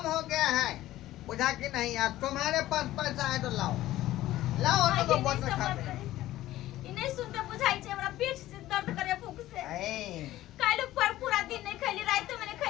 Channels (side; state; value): right; quieter; 15.1 dB